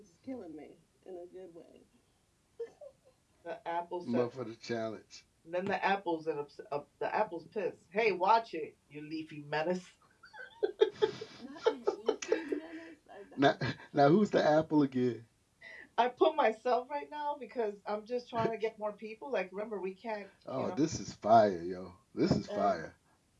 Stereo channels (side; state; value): both; identical; correlation 1.00